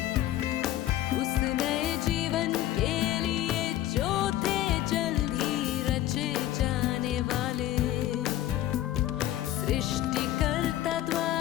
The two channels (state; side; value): quieter; right; 13.7 dB